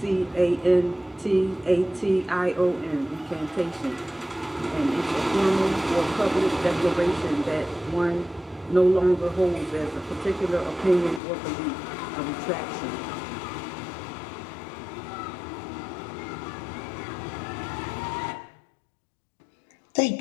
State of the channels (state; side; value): drops out; right; at 11.2 s